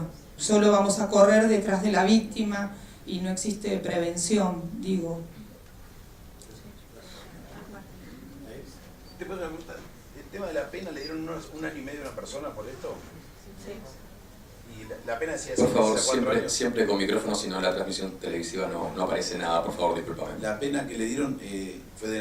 Solo vamos a correr detrás de la víctima y no existe prevención, digo. ¿El tema de la pena le dieron un año y medio a una persona por esto? Sí. Y la pena decía por favor, siempre con micrófono, si no la transmisión televisiva no aparece nada, por favor, discúlpame. La pena que le dieron fue de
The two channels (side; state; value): both; identical; correlation 1.00